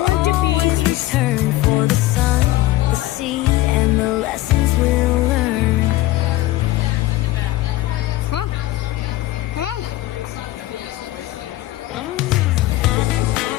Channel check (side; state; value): right; quieter; 16.7 dB